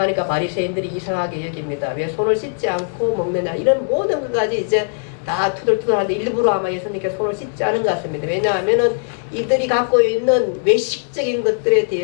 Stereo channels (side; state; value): right; silent; digital silence